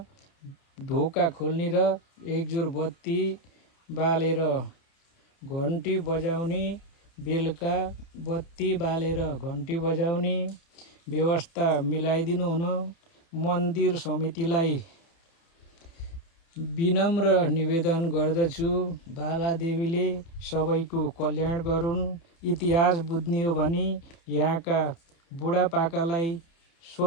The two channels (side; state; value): right; late; 30 ms